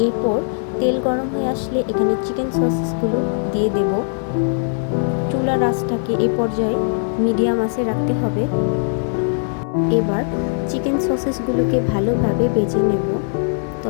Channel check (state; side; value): silent; right; digital silence